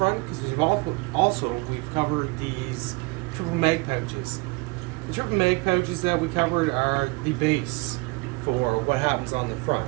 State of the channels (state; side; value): quieter; left; 26.7 dB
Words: because we've covered these triple mag pouches. The triple mag pouches that we covered are the base for what happens on the